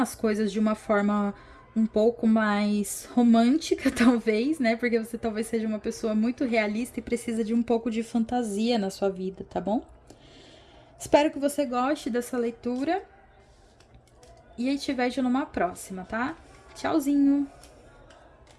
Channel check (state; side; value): identical; both; correlation 1.00